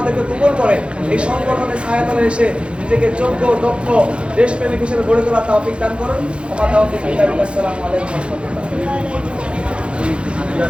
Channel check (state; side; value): late; left; 0.058 ms